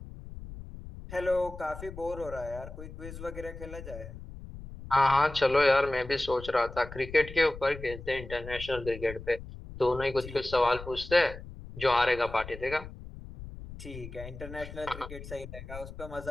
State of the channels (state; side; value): noise; left; rumble, 13 dB below the sound